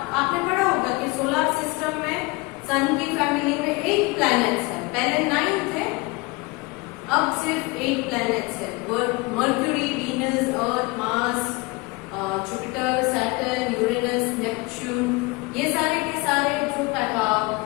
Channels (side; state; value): right; quieter; 24.9 dB